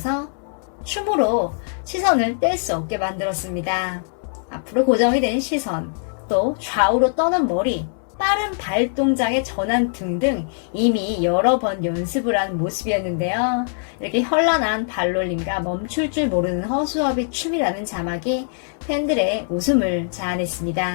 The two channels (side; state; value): right; silent; 60 dB below the other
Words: 춤으로 시선을 뗄 수 없게 만들었습니다. 앞으로 고정이 된 시선, 또 좌우로 떠는 머리, 빠른 발 동작의 전환 등등 이미 여러 번 연습을 한 모습이었는데요. 이렇게 현란한 발놀림과 멈출 줄 모르는 허수아비 춤이라는 자막이 팬들의 웃음을